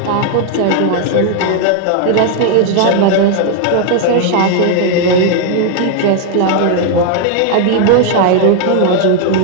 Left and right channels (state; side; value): different; both; correlation 0.00